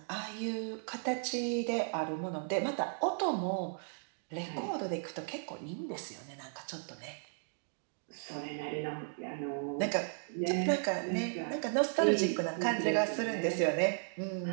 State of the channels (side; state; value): left; silent; digital silence